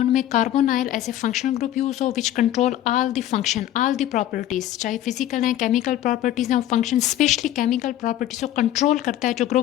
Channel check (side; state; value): right; quieter; 12.8 dB